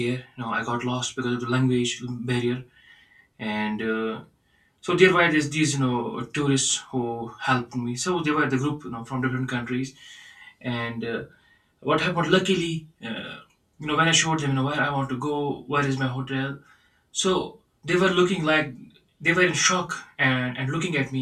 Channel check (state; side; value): identical; both; correlation 1.00